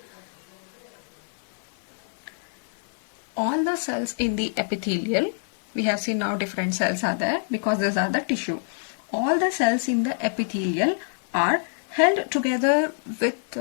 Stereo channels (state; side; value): silent; right; 61 dB below the other